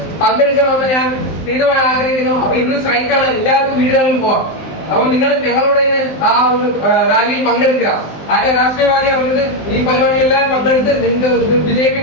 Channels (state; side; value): late; right; 19 ms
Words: പങ്കെടുക്കണമെന്ന് ഞാൻ തീരുമാനം ആഗ്രഹിക്കുന്നു. അപ്പൊ ഇന്ന് സ്ട്രൈക്കാണ്, എല്ലാവർക്കും വീടുകളിൽ പോകാം. അപ്പം നിങ്ങൾ ഞങ്ങളോട് ആ ഒരു റാലിയിൽ പങ്കെടുക്കുക. ആരുടെ രാഷ്ട്രീയവാദി അവർക്ക് ഈ പരിപാടികളെല്ലാം പങ്കെടുത്ത് നിങ്ങൾക്ക്